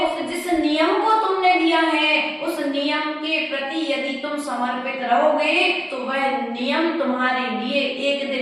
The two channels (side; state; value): both; identical; correlation 1.00